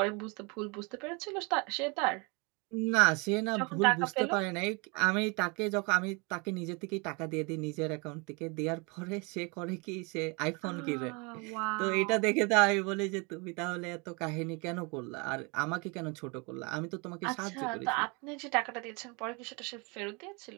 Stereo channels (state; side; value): quieter; left; 30.4 dB